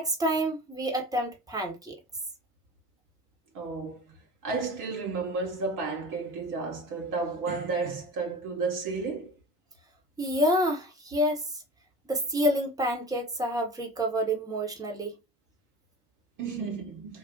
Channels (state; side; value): normal; both; correlation 0.34